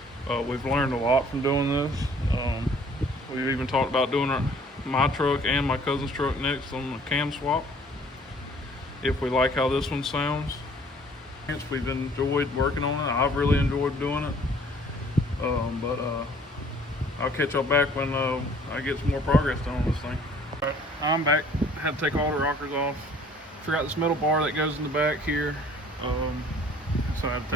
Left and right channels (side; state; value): both; normal; correlation 0.55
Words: We've learned a lot from doing this. We've even talked about doing my truck and my cousin's truck next on the cam swap, if we like how this one sounds. We've enjoyed working on it. I've really enjoyed doing it. But I'll catch y'all back when I get some more progress done on this thing. All right, I'm back. Had to take all the rockers off. Forgot this metal bar that goes in the back here. So I had to